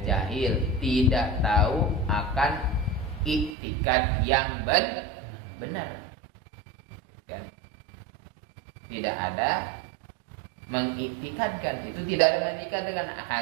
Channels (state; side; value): drops out; left; at 3.6 s